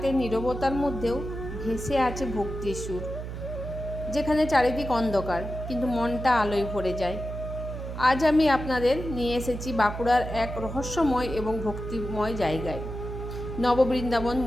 নীরবতার মধ্যেও ভেসে আছে ভক্তির সুর, যেখানে চারিদিক অন্ধকার কিন্তু মনটা আলোয় ভরে যায়? আজ আমি আপনাদের নিয়ে এসেছি বাঁকুড়ার এক রহস্যময় এবং ভক্তিময় জায়গায়, নববৃন্দাবন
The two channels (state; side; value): noise; right; hum, 7 dB below the sound